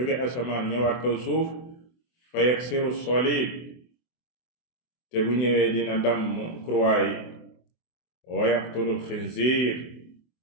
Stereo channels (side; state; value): right; late; 24 ms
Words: asamaan ñëwaat kaw suuf fa yaksiru salib te bu ñëwee dina damm croix yi wa yaqtulu alxinziir